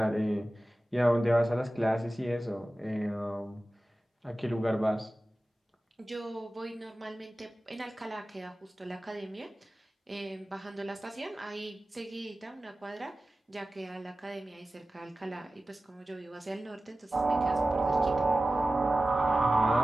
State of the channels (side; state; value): both; normal; correlation 0.96